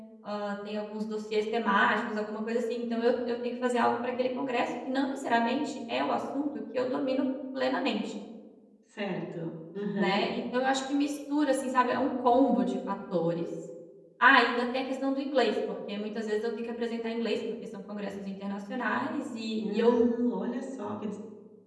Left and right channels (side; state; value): both; identical; correlation 1.00